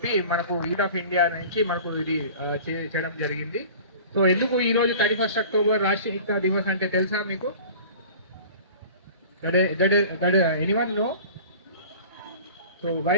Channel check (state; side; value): inverted; both; correlation -0.42